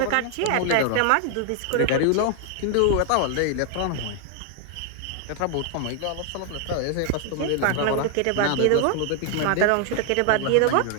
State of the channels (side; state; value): both; different; correlation 0.00